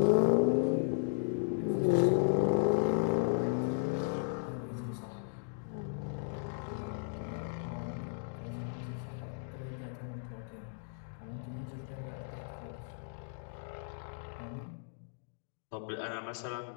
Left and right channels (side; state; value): right; silent; digital silence